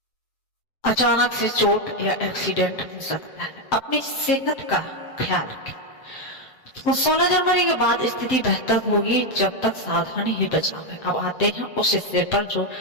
अचानक से चोट या एक्सीडेंट हो सकता है, अपनी सेहत का ख्याल रखें। तो 16 जनवरी के बाद स्थिति बेहतर होगी, जब तक सावधानी ही बचाव है। अब आते हैं उस हिस्से पर जो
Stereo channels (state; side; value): late; right; 7.7 ms